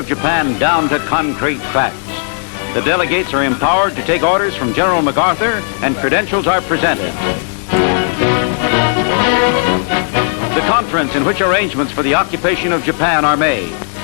Japan down to concrete facts. The delegates are empowered to take orders from General MacArthur, and credentials are presented. The conference in which arrangements for the occupation of Japan are made.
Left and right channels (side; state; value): right; silent; digital silence